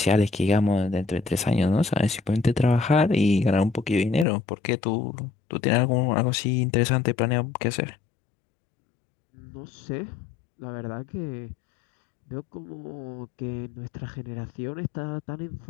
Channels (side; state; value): right; drops out; at 4.2 s